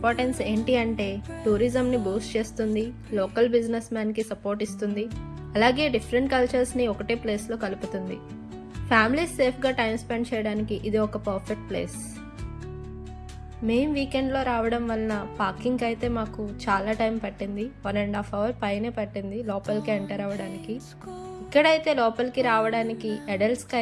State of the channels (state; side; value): identical; both; correlation 1.00